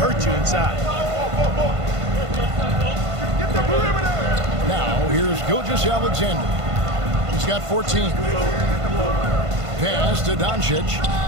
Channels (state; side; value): late; left; 1.5 ms